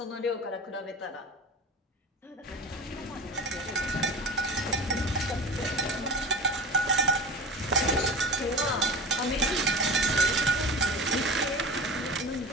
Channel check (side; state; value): both; normal; correlation 0.32